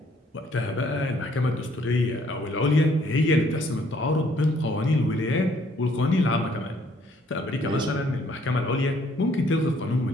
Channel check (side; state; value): both; normal; correlation 0.64